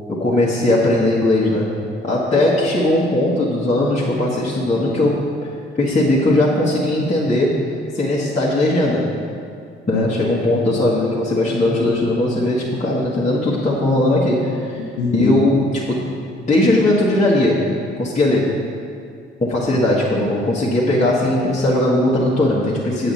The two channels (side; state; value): both; normal; correlation 0.61